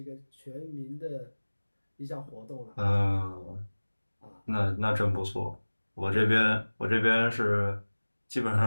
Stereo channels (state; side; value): inverted; both; correlation -1.00